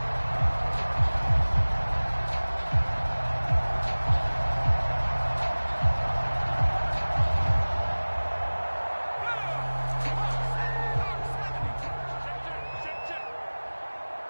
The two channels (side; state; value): both; inverted; correlation -1.00